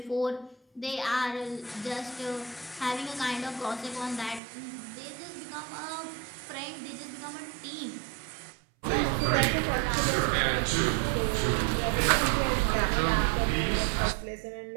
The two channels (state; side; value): drops out; left; at 4.4 s